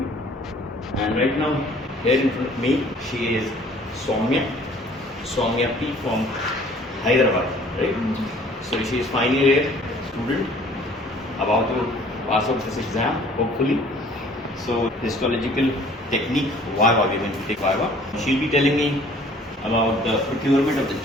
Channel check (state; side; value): normal; both; correlation 0.54